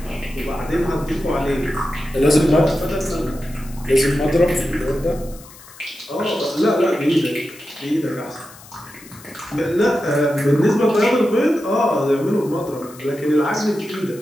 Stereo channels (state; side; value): noise; left; hiss, 21 dB below the sound